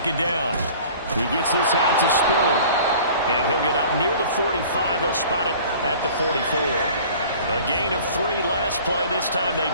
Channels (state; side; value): inverted; both; correlation -0.46